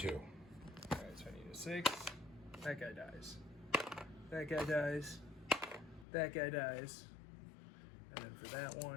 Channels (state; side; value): drops out; right; at 6.1 s